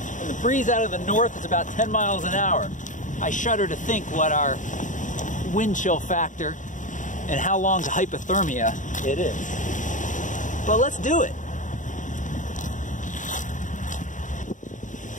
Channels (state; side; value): late; right; 0.37 ms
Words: the breeze out of the north is about 10 miles an hour. I shudder to think what our wind chill factor and how long to hypothermia it is. But let's do it.